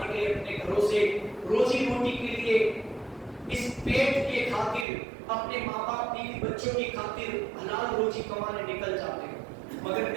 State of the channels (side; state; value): left; drops out; at 4.9 s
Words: کے لیے اپنے گھروں سے روزی روٹی کے لیے اس پیٹ کے خاطر اپنے ماں باپ بیوی بچوں کی خاطر حلال روزی کمانے نکل جاتے ہیں. مگر